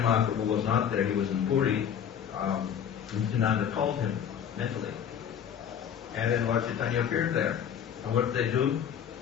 Mahaprabhu was not there, he was in Puri, Nityananda called him mentally. And then Lord Chaitanya appeared there. And what did they do?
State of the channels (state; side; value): quieter; right; 8.5 dB